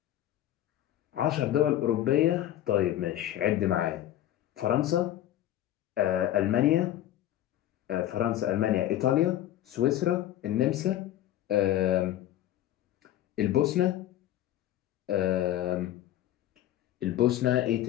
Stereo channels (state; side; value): quieter; right; 12.8 dB